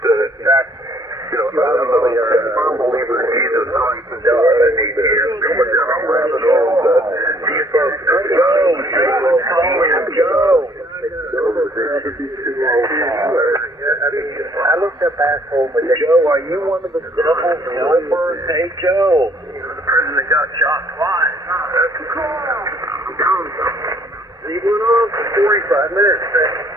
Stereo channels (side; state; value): both; normal; correlation 0.61